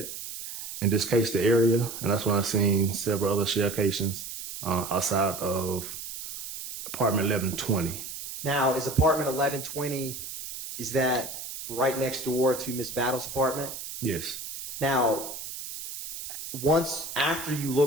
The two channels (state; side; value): noise; right; hiss, 9 dB below the sound